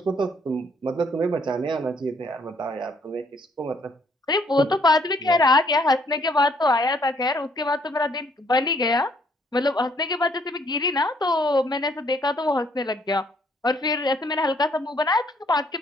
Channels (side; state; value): both; normal; correlation 0.66